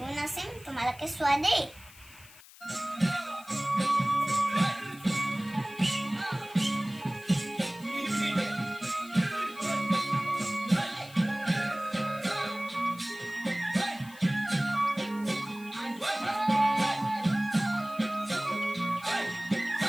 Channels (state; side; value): noise; left; hiss, 21 dB below the sound